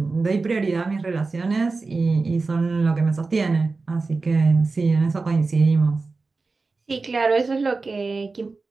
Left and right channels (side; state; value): left; quieter; 3.9 dB